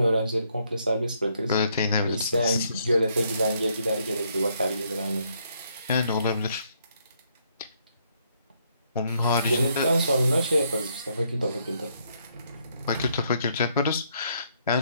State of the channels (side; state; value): both; inverted; correlation -0.72